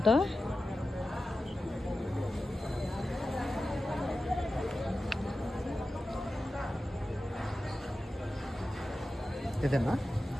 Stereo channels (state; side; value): normal; both; correlation 0.93